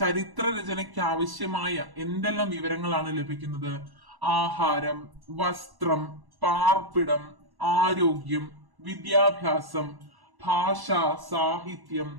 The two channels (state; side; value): late; left; 1.1 ms